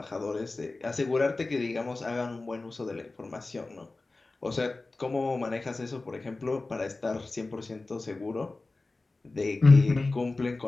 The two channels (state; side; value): quieter; right; 3.3 dB